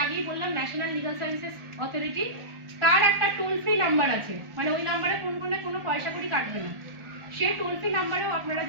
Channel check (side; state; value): left; late; 1.4 ms